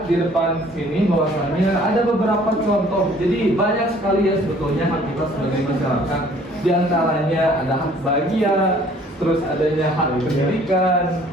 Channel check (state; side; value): normal; both; correlation 0.56